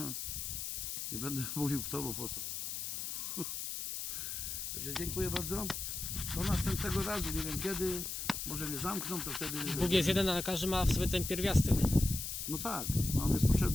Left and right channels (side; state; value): left; noise; hiss, 4 dB below the sound